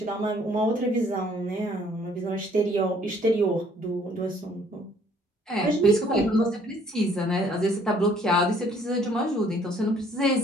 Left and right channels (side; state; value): both; normal; correlation 0.61